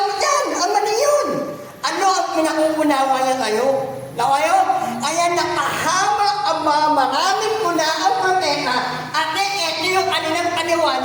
mo dyan. Ang mali yun. Ano ang pinag-uunawa niya kayo? Na kayo? Kaya nakahama ang mga maraming muna ang propeta at ito yung kanilang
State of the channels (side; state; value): both; identical; correlation 1.00